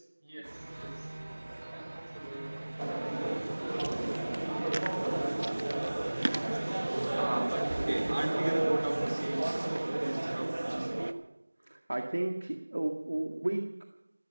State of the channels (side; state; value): both; inverted; correlation -1.00